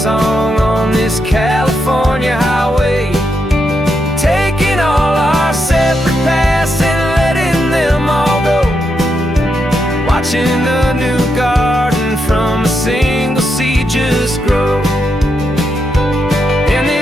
on this California highway, taking all our separate paths and letting them all go, watching a new garden from a single seed just grow. And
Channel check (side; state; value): both; normal; correlation 0.83